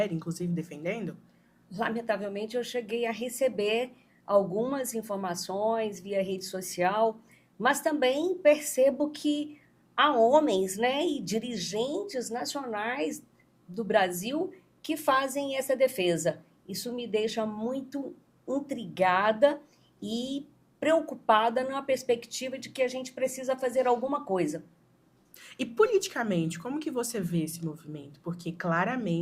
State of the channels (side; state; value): both; identical; correlation 1.00